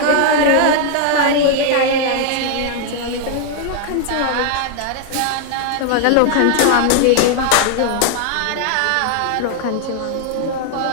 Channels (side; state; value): both; different; correlation 0.00